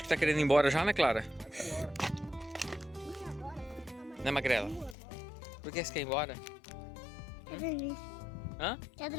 que tá querendo ir embora já, né, Clara? Né, Magrela? Por que você quer ir embora? Quer dormir. Hã? Quer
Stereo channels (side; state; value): right; drops out; at 5.0 s